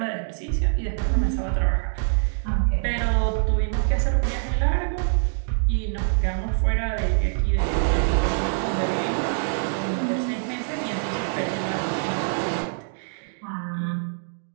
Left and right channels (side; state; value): left; silent; digital silence